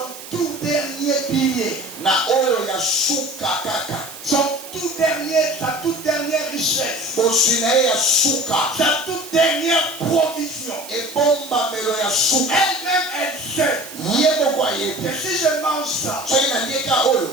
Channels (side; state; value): right; noise; hiss, 14 dB below the sound